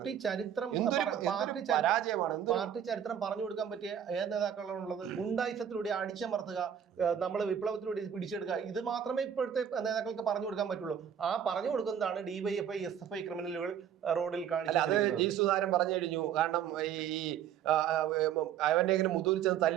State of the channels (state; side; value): quieter; left; 9.0 dB